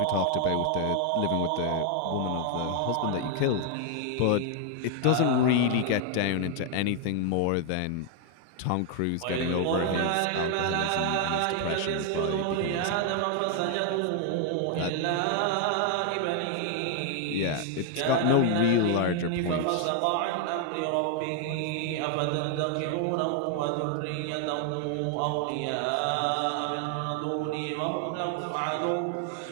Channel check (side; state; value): both; different; correlation 0.00